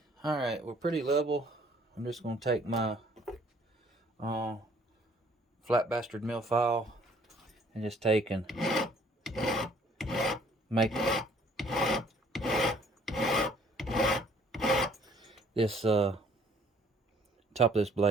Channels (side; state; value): both; normal; correlation 0.59